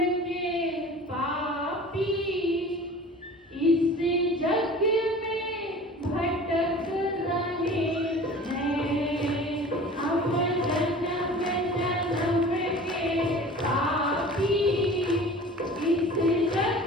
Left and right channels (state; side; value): normal; both; correlation 0.41